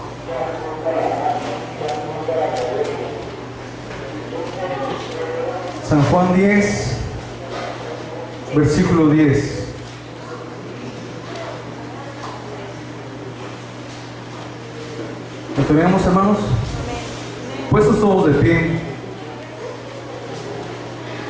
San Juan 10, versículo 10. ¿Lo tenemos, hermanos? Puestos todos de pie.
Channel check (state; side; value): identical; both; correlation 1.00